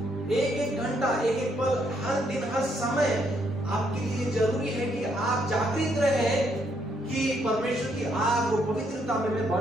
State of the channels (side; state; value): both; normal; correlation 0.73